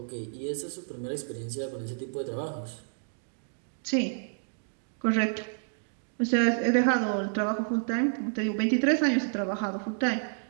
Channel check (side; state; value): left; silent; digital silence